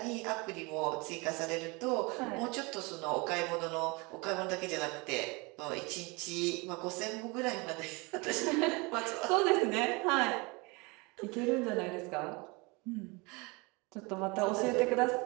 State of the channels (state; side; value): quieter; left; 27.3 dB